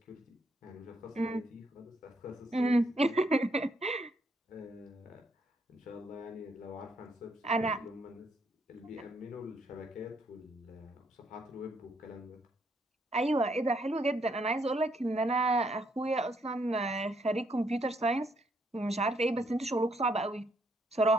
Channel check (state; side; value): normal; both; correlation 0.73